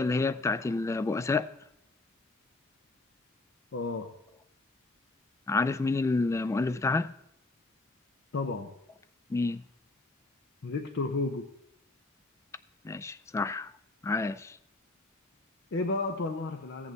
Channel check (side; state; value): right; quieter; 3.0 dB